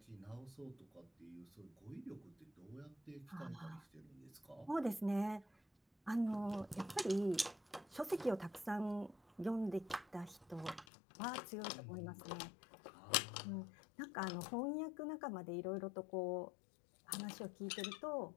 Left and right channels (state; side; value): drops out; right; at 10.9 s